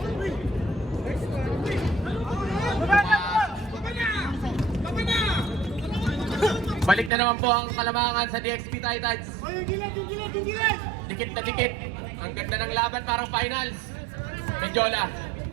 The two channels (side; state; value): left; drops out; at 7.1 s